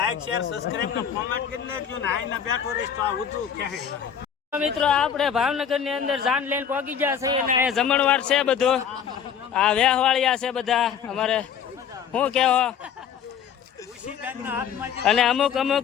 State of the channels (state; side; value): quieter; right; 8.1 dB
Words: શેર સબસ્ક્રાઇબ ને કોમેન્ટ કરી લેજો ને. આઈને બેઠો રહીશ તો આ વધુ ક્યાંય મિત્રો આપણે ભાવનગર ની અંદર જાન લઈને પહોંચી ગયા છે અને અહીંયા જમણવાર છે બધું. આ વેહવાળિયા છે બધા અમારે. શું કહેવો? અને અમુક